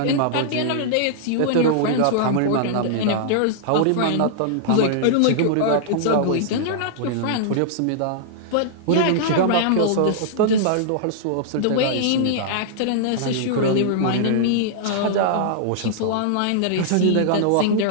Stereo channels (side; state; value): both; different; correlation -0.01